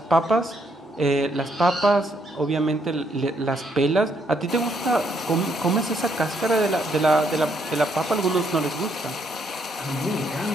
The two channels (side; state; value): both; normal; correlation 0.73